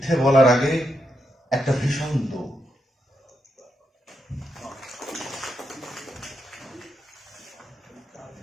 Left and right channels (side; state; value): both; normal; correlation 0.83